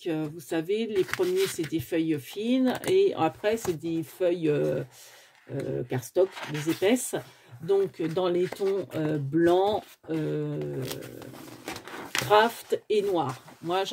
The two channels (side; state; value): both; identical; correlation 1.00